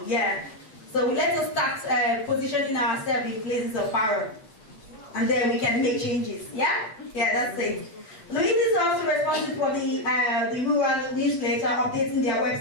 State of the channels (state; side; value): late; right; 8.8 ms